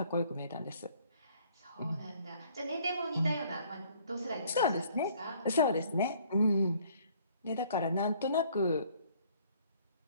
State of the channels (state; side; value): inverted; both; correlation -0.60